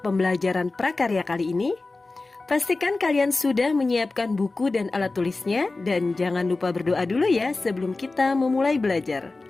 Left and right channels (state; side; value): quieter; right; 3.4 dB